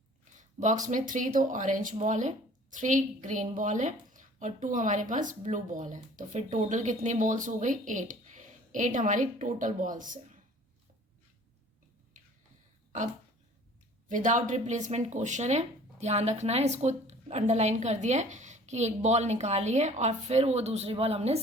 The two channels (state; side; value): normal; both; correlation 0.50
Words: में 3 तो ऑरेंज बॉल है, 3 ग्रीन बॉल है और 2 हमारे पास ब्लू बॉल है. तो फिर टोटल कितनी बॉल्स हो गई, 8 हमारी टोटल बॉल्स है. अब विदाउट रिप्लेसमेंट क्वेश्चन है, ध्यान रखना है. इसको अंडरलाइन कर दिया है कि एक बॉल निकाली है और फिर वो दूसरी बॉल हमने